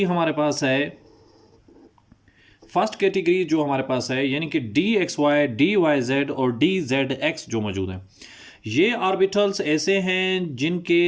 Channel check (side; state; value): both; identical; correlation 1.00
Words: हमारे पास है, यानी कि D X Y, D Y Z और डी जेड एक्स जो मौजूद हैं, ये ऑर्बिटल्स ऐसे हैं